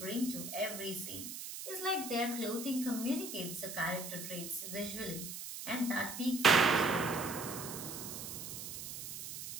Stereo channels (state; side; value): noise; right; hiss, 8 dB below the sound